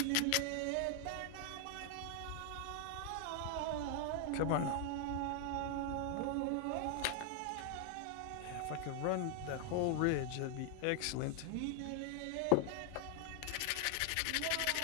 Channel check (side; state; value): both; different; correlation 0.00